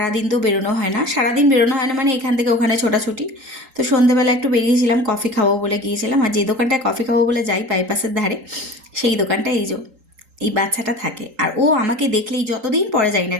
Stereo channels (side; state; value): left; late; 3.8 ms